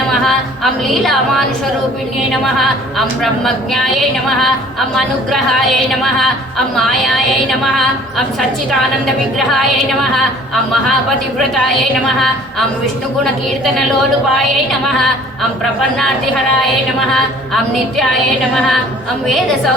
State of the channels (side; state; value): both; normal; correlation 0.52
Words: अं लीलामानुषरूपिण्यै नमः अं ब्रह्मज्ञायै नमः अं अनुग्रहायै नमः अं मायायै नमः अं सच्चिदानन्दविग्रहायै नमः अं महापतिव्रतायै नमः अं विष्णुगुणकीर्तनलोलुपायै नमः अं प्रपन्नार्तिहरायै नमः अं नित्यायै नमः अं